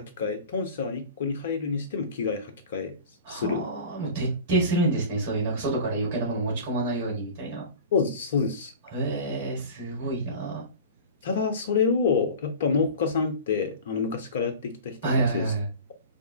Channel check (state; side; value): inverted; both; correlation -0.36